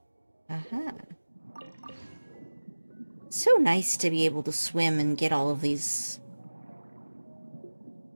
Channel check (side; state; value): both; inverted; correlation -1.00